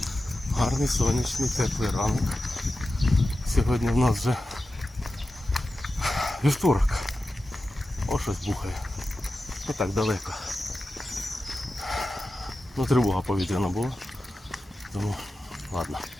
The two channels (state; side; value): normal; both; correlation 0.93